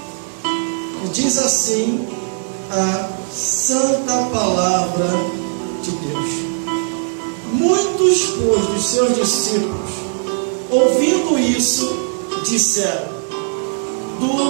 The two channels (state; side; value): silent; left; digital silence